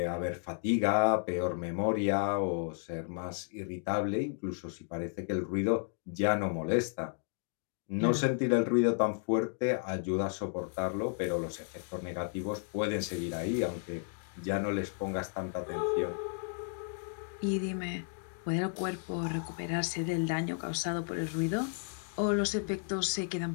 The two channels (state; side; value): silent; right; 56 dB below the other